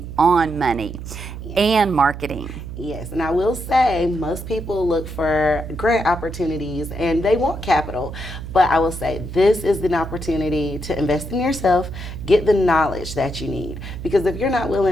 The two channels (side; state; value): right; noise; hum, 10 dB below the sound